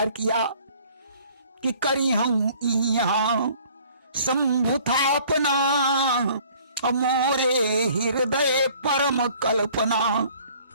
किया कि करी हूं यहाँ शंभुथापना, मोरे हृदय परम कल्पना।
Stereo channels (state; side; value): inverted; both; correlation -0.55